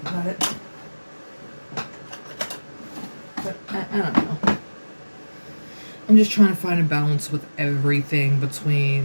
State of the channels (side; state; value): both; inverted; correlation -1.00